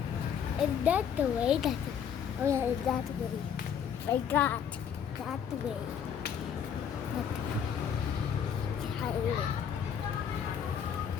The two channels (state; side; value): quieter; right; 7.9 dB